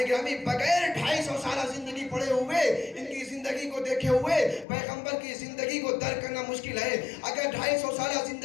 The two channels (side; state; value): right; drops out; at 4.7 s